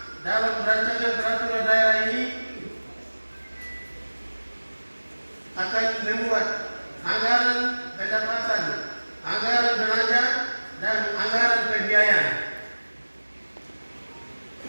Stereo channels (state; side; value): inverted; both; correlation -1.00